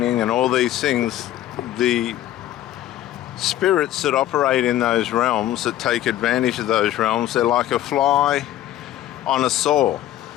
and all these things. The spirits that operate in those realms, that take advantage of those realms, they're like a fly on a saw,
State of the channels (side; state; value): right; quieter; 13.1 dB